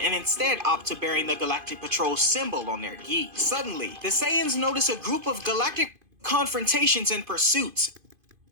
instead opt to bearing the Galactic Patrol symbol on their gi. Suddenly, the Saiyans notice a group of galactic confrontations and pursuits.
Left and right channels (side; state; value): left; late; 2.5 ms